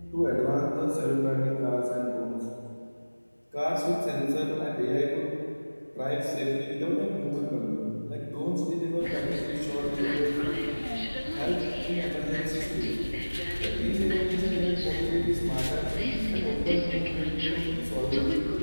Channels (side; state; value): both; inverted; correlation -1.00